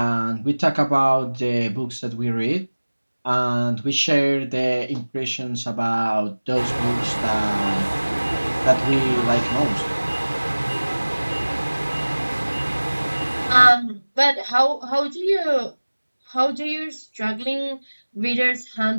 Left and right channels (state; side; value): inverted; both; correlation -1.00